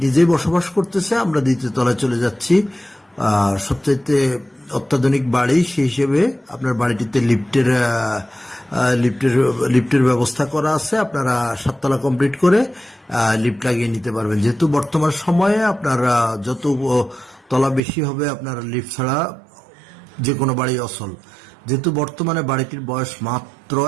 নিজেই বসবাস করতেছে। আমরা দ্বিতীয় তলায় চলে যাচ্ছি। সবচাইতে অত্যাধুনিক বাড়ি সেই হিসেবে আপনার বাড়িটিতে লিফটের ব্যবস্থা করা আছে। আপনারা 7 তলা কমপ্লিট করে লিফট লাগিয়ে নিতে পারবেন, যেহেতু বর্তমান সময়ে আপনার যত তলা বেশি হবে আপনার লিফট ছাড়া যে কোনো বাড়ি অচল। যেহেতু বর্তমানে বাড়িটির বয়স মাত্র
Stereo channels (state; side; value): drops out; left; at 17.8 s